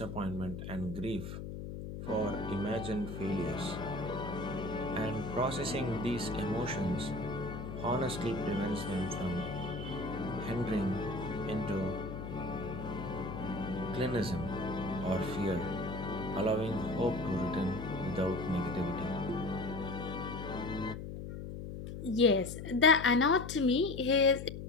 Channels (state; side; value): noise; left; hum, 8 dB below the sound